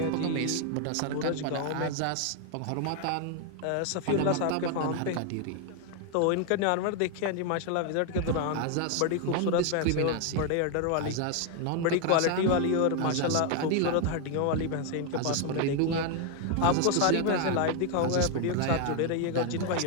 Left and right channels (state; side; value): different; both; correlation 0.01